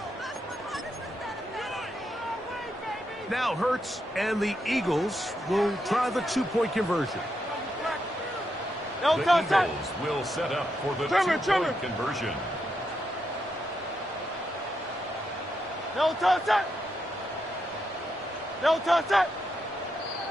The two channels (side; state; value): both; normal; correlation 0.82